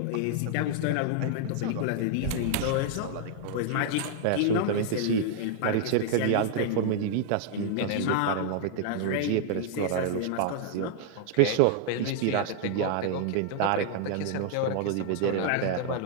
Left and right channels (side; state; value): both; different; correlation -0.01